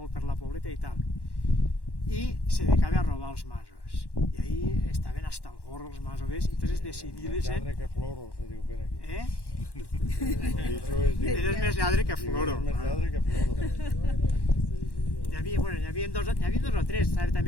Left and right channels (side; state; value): right; late; 1.1 ms